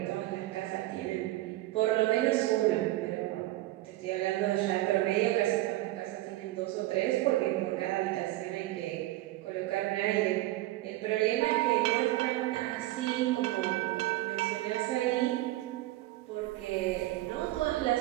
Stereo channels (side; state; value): left; quieter; 17.1 dB